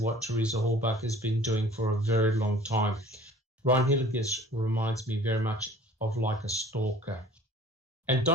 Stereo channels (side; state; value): both; normal; correlation 0.48